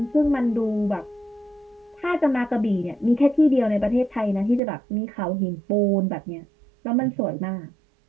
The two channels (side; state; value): left; drops out; at 4.6 s